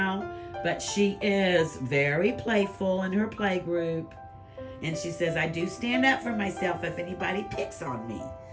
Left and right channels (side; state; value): both; identical; correlation 1.00